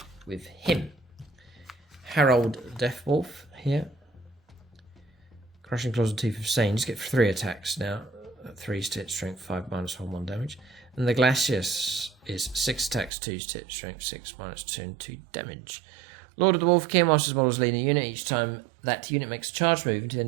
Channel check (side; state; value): left; drops out; at 13.1 s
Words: With him. Harold Deathwolf here. Crushing Claws and Teeth of Sane. Just get 3 attacks now. 3 to hit, strength 5, -1, 1 damage. And the Glacius is 6 attacks, 2 to hit, strength 6, -2, and 2 damage. Lord of the Wolf King, whilst his models leading a unit, each time that unit makes a charge move until the